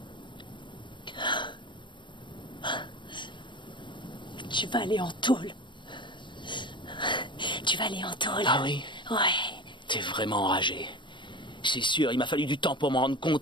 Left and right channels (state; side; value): late; right; 0.23 ms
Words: Tu vas aller en tôle. Tu vas aller en tôle. Ah oui? Ouais. T'es vraiment enragé. C'est sûr, il m'a fallu du temps pour m'en rendre